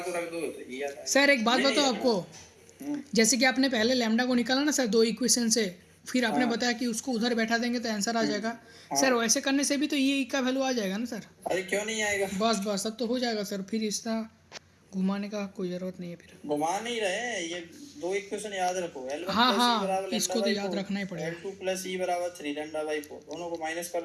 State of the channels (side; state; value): both; identical; correlation 1.00